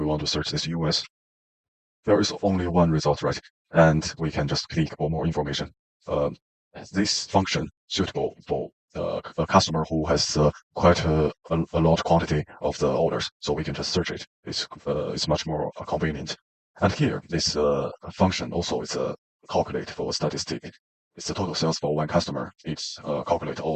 want to search this US, there is only one result, right? And we can just click for more information. Um, this function suitable for a customer who has quite a large quantity of the orders, so we can just search it. It's much more convenient. And here, this function also is a calculate for statistic. It's the total sales for one customer. It's calculate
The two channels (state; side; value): identical; both; correlation 1.00